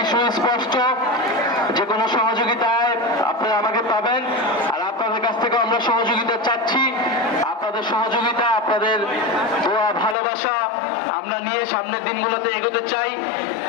সুস্পষ্ট। যে কোনো সহযোগিতায় আপনারা আমাকে পাবেন, আর আপনাদের কাছ থেকে আমরা সহযোগিতা চাচ্ছি। আপনাদের সহযোগিতা, আপনাদের দোয়া, ভালোবাসা আমরা নিয়ে সামনের দিনগুলোতে এগোতে চাই।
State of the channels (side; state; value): right; drops out; at 10.2 s